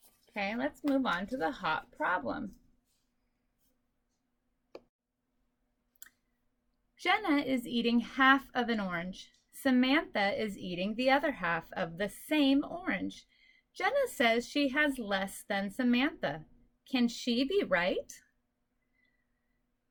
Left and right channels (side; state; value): both; identical; correlation 1.00